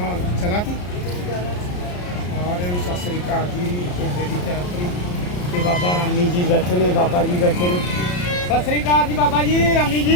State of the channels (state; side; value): late; right; 34 ms